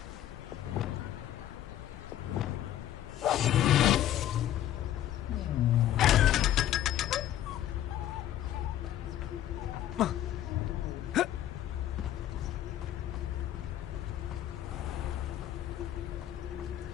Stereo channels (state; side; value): quieter; right; 12.0 dB